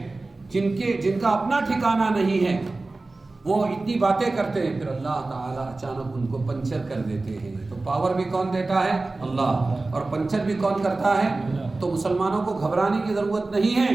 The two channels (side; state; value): left; quieter; 3.3 dB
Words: جن کا اپنا ٹھکانہ نہیں ہے، وہ اتنی باتیں کرتے ہیں، پھر اللہ تعالیٰ اچانک ان کو پنچر کر دیتے ہیں۔ تو پاور بھی کون دیتا ہے؟ اللہ، اور پنچر بھی کون کرتا ہے؟ تو مسلمانوں کو گھبرانے کی ضرورت نہیں